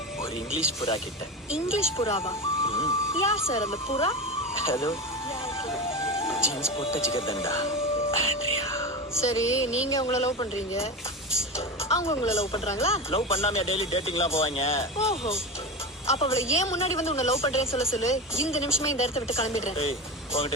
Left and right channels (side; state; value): both; normal; correlation 0.23